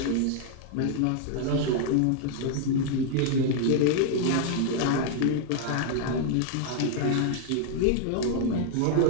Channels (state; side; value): different; both; correlation 0.00